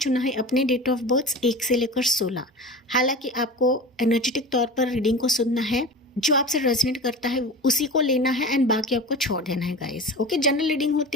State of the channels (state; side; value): normal; both; correlation 0.33